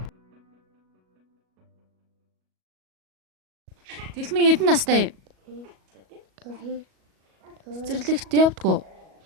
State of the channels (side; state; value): left; late; 37 ms